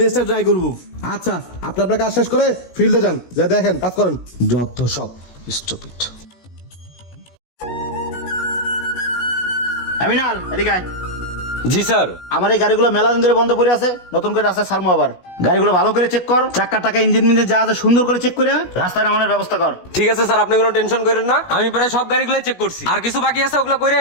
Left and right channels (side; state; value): right; late; 16 ms